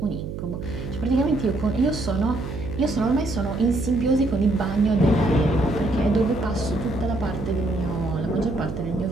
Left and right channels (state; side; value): noise; right; hum, 7 dB below the sound